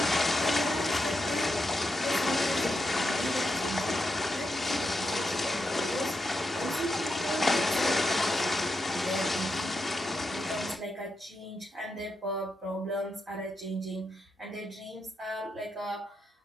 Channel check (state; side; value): normal; both; correlation 0.85